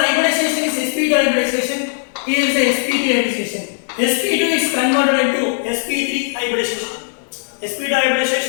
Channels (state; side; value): silent; right; digital silence